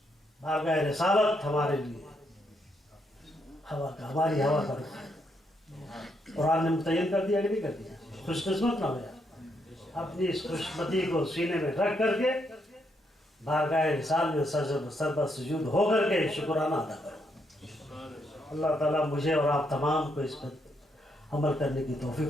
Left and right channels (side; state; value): both; normal; correlation 0.77